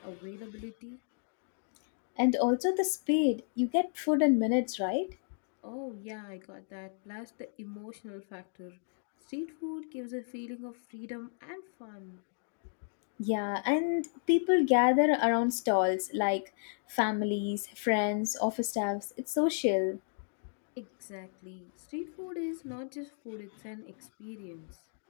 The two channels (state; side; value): silent; right; digital silence